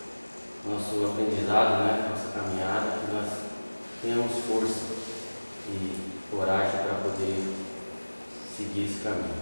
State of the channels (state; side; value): inverted; both; correlation -1.00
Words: nosso aprendizado, né? Nossa caminhada, que nós tenhamos força e coragem para poder seguir esse caminho.